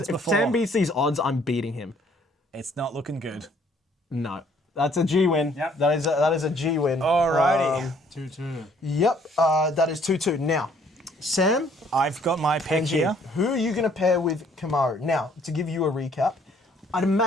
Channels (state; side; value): normal; both; correlation 0.62